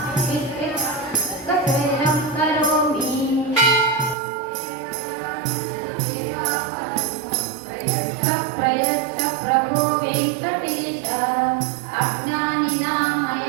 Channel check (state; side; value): drops out; left; at 4.2 s